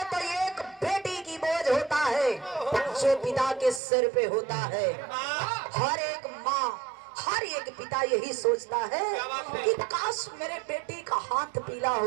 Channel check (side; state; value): left; drops out; at 3.8 s